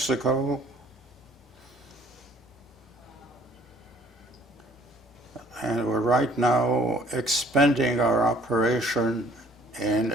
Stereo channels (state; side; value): normal; both; correlation 0.57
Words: And we're right now expanding our operation in